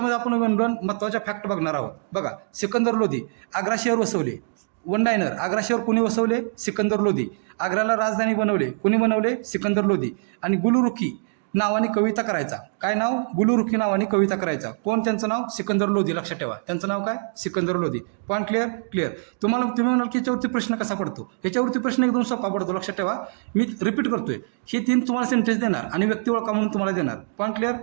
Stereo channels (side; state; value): left; silent; digital silence